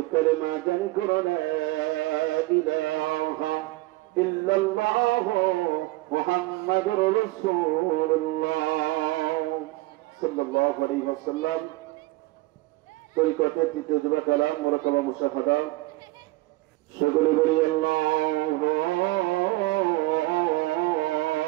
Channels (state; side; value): quieter; left; 20.2 dB